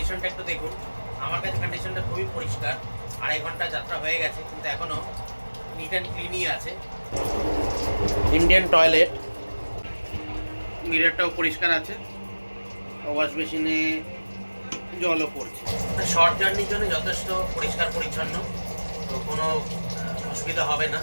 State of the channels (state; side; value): inverted; both; correlation -1.00